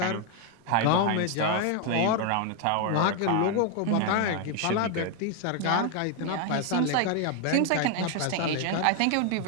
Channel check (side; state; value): both; different; correlation 0.01